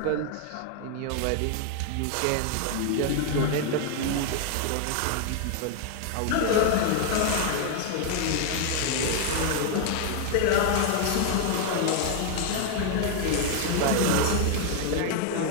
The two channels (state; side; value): different; both; correlation 0.00